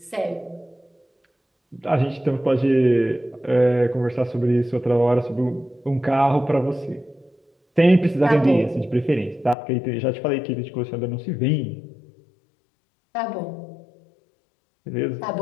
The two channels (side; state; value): right; drops out; at 9.6 s